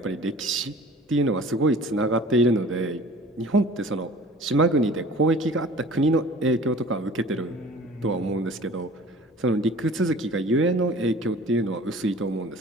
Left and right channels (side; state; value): both; normal; correlation 0.45